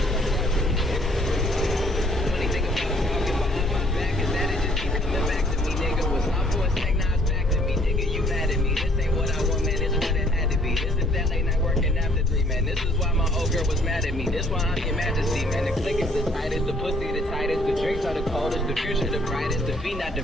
Funny thing about talking behind my back is that it just keep coming back to me, nigga. Was not for a sec, now it's back to me, nigga. You mad at me? This ain't what I want, man. This what it had to be. This is that late night working after 3, man. This is why my old girl was mad at me. This why I'm your majesty, man. The click is the tightest, the pussy the tightest, the drinks are the coldest, the future the brightest, the feet not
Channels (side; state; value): both; normal; correlation 0.62